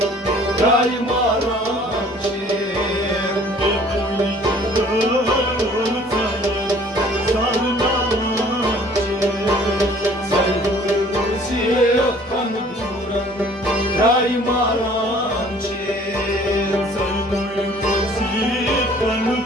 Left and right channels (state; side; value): normal; both; correlation 0.54